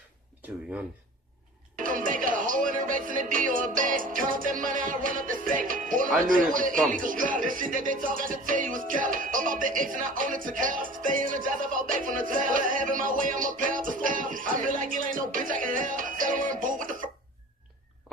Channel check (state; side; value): normal; both; correlation 0.42